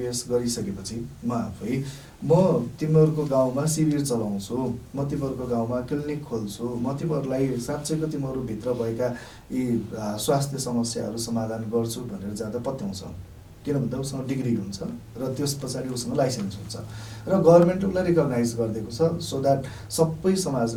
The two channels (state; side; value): identical; both; correlation 1.00